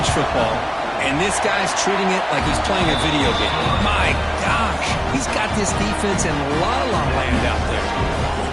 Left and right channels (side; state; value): both; identical; correlation 1.00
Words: football, and this guy's treating it like he's playing a video game. My gosh, he's got this defense in la-la land out there.